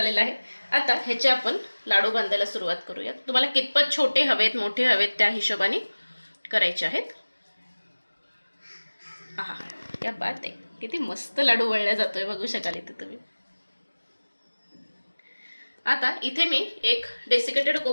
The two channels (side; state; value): both; inverted; correlation -1.00